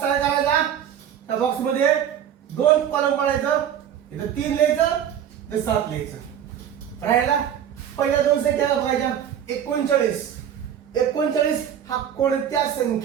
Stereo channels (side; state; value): left; quieter; 9.5 dB